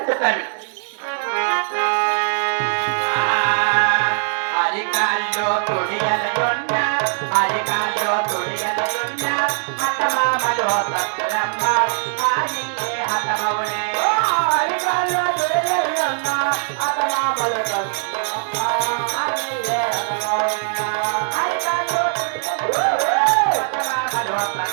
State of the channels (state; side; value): silent; left; digital silence